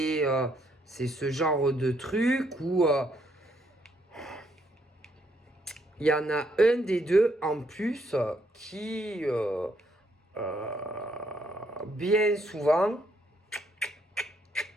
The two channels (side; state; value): both; normal; correlation 0.72